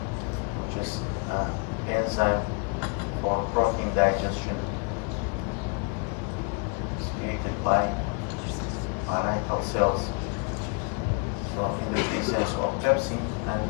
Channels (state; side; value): quieter; right; 34.5 dB